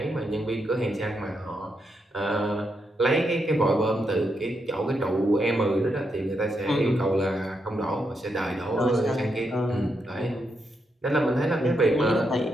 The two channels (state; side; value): normal; both; correlation 0.82